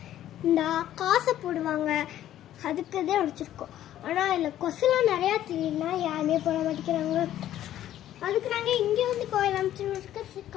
இந்த காசை போடுவாங்க, அதுக்கு தான் வச்சுருக்கோம். ஆனால் இதில் கொசுலாம் நிறையா தெரியும்னா யாருமே போட மாட்டேங்கிறாங்க. அதுக்கு நாங்கள் இங்கே வந்து கோயில் அமைச்சிருக்க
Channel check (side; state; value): right; quieter; 12.3 dB